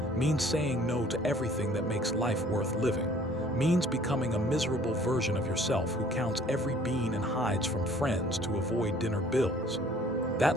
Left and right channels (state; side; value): normal; both; correlation 0.54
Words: means saying no to everything that makes life worth living, means becoming a miserable version of yourself who counts every bean and hides from friends to avoid dinner bills.